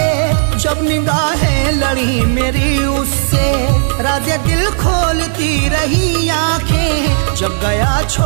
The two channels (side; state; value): left; silent; digital silence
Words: जब निगाहें लड़ी मेरी उससे, राज़े दिल खोलती रही आंखें, जब गया